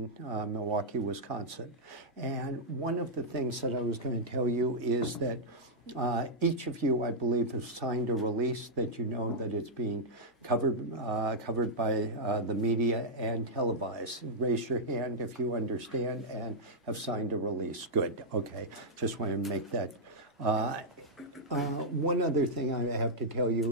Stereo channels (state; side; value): normal; both; correlation -0.07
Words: Milwaukee, Wisconsin. And one of the things that I was going to tell you is that each of you, I believe, have signed a release that you know that it's being covered by the media and televised. Raise your hand if you understand and have signed a release. Good. Okay. Just wanted to make that. One other thing I have to tell